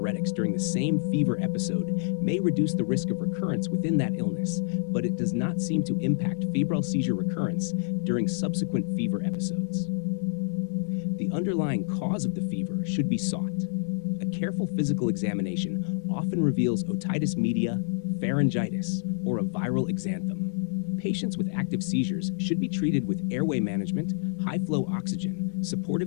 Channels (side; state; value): right; silent; 60 dB below the other